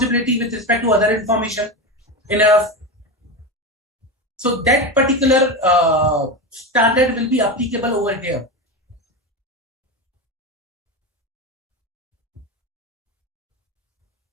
with respect to other information in a. So that particular standard will be applicable over here.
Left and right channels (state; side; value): normal; both; correlation 0.19